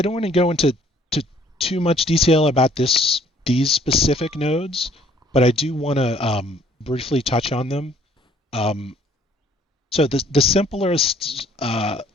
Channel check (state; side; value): normal; both; correlation 0.60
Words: don't want to go into too much detail about these specific nodes, but I do want to briefly touch on them. So the simplest